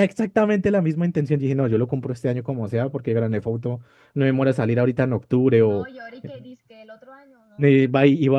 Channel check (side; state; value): both; identical; correlation 1.00